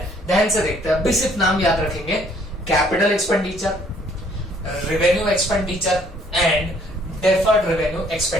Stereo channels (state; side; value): normal; both; correlation 0.62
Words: ध्यान से देखते हैं। अभी सिर्फ नाम याद रखेंगे, capital expenditure, revenue expenditure and deferred revenue